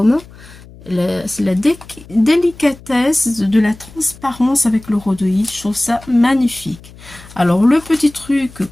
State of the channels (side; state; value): left; noise; hum, 21 dB below the sound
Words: C'est la délicatesse de la transparence avec le rhodoïde. Je trouve ça magnifique. Alors le petit truc